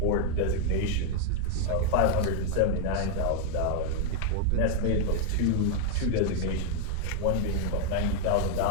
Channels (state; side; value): different; both; correlation 0.00